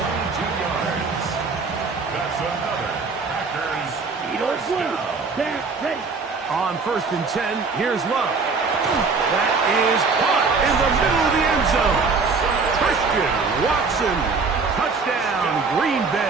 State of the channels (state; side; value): quieter; left; 4.5 dB